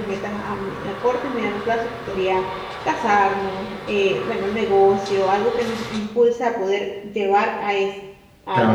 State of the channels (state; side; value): identical; both; correlation 1.00